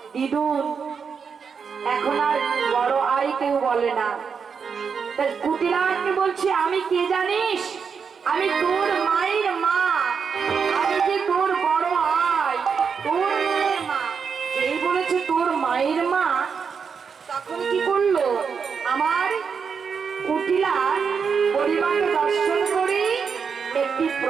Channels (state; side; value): quieter; left; 6.1 dB